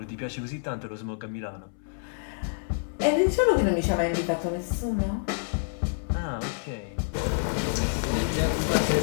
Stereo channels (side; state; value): right; silent; 60 dB below the other